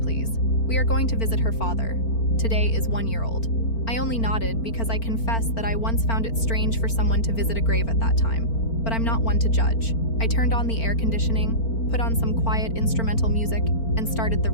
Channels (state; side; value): late; right; 4.4 ms